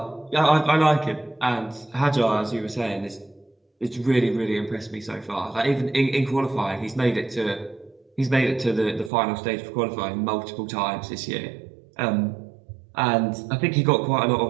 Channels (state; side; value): drops out; left; at 9.1 s